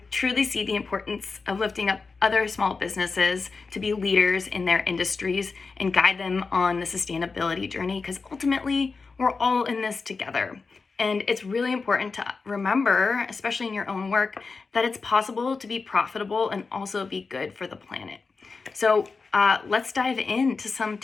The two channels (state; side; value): quieter; right; 4.4 dB